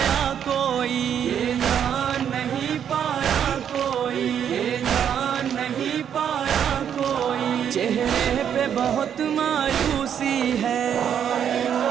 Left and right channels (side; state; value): left; quieter; 8.8 dB